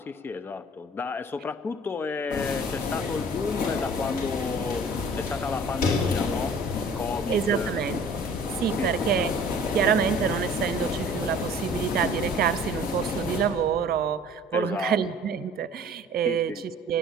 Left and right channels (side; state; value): both; normal; correlation 0.49